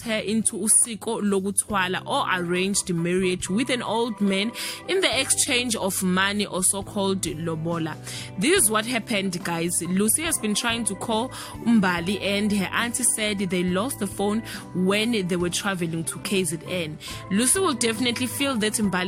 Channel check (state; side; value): identical; both; correlation 1.00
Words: her into usiko lokuthwala, or arranged marriage with an old man in the exchange of money, or so-called lobola. This is what happened, guys. Lucy has been trying to call Mbali and her auntie said they lost the phone when they were traveling to KZN. Lucy will definitely feel that